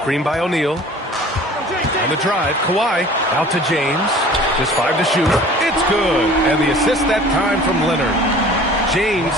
by O'Neal. On the drive, Kawhi out to James. Just 5 to shoot. It's good. And the assist that time from Leonard. James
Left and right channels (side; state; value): both; normal; correlation 0.46